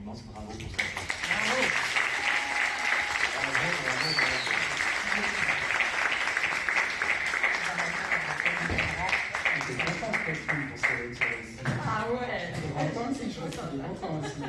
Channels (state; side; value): identical; both; correlation 1.00